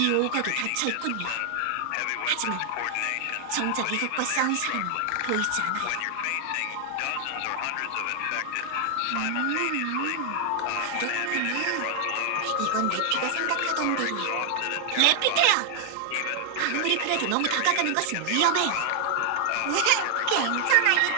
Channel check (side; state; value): both; different; correlation 0.00